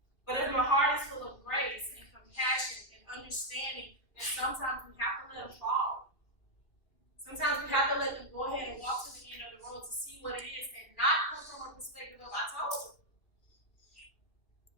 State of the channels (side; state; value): right; late; 2.7 ms